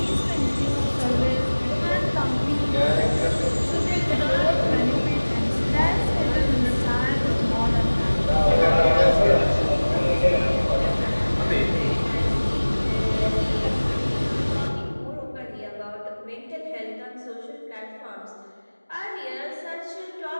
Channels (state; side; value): inverted; both; correlation -1.00